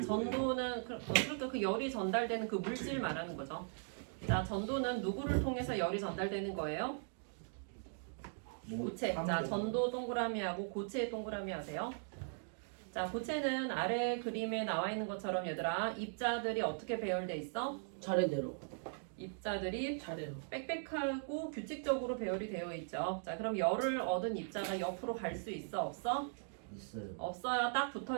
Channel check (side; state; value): left; silent; digital silence